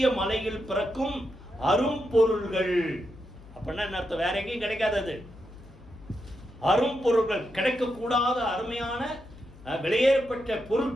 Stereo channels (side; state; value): left; noise; hum, 20 dB below the sound